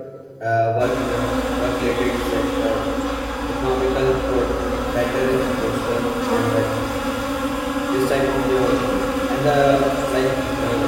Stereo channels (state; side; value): identical; both; correlation 1.00